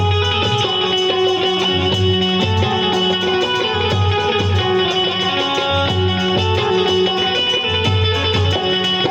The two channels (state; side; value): identical; both; correlation 1.00